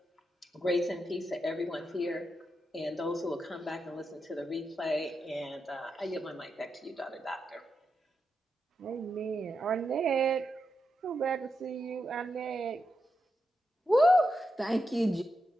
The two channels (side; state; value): both; normal; correlation 0.86